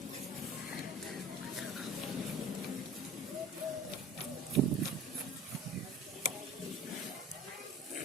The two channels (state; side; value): normal; both; correlation 0.43